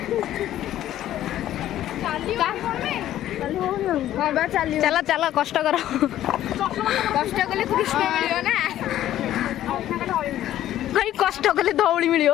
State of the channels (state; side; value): quieter; right; 12.7 dB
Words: चला चला कष्ट कर कष्ट कले कृष्ण मिलियो ना भाई कष्ट कले धौली मिलियो